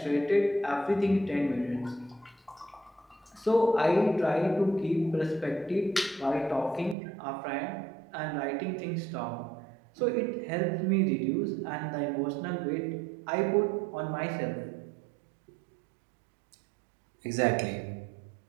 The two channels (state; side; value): drops out; left; at 7.0 s